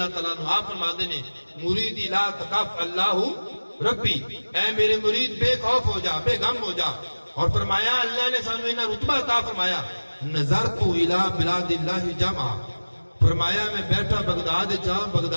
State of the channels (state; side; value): inverted; both; correlation -1.00